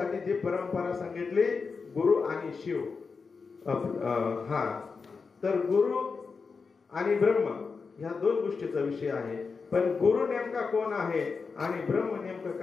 जी परंपरा सांगितली, गुरु आणि शिव. तर गुरु आणि ब्रह्म ह्या दोन गोष्टीचा विषय आहे. पण गुरु नेमका कोण आहे आणि ब्रह्म नेमकं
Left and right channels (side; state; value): right; quieter; 4.9 dB